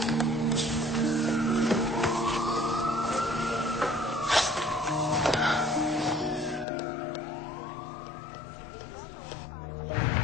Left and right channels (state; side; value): drops out; right; at 6.7 s